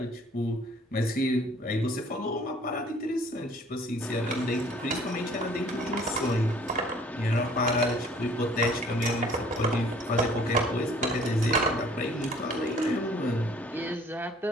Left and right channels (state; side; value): normal; both; correlation 0.55